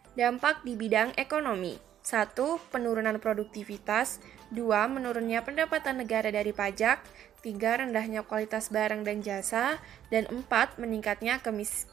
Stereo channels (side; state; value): left; quieter; 10.8 dB